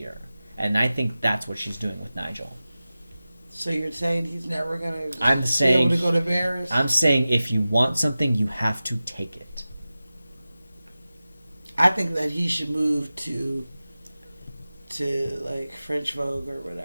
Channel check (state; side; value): inverted; both; correlation -0.96